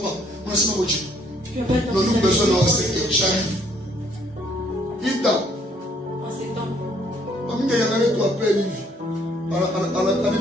on a nous avons besoin de 5 heures. J'arrive. Vite dans. Il y a un tu appelles Livy. Elle a le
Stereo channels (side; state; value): both; normal; correlation 0.65